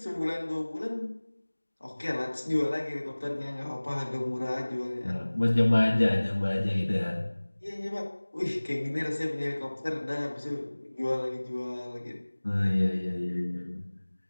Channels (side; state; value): both; inverted; correlation -1.00